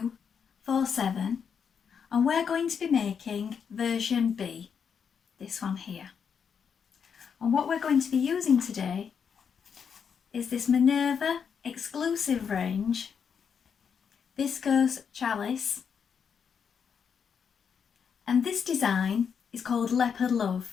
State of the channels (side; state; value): right; quieter; 6.9 dB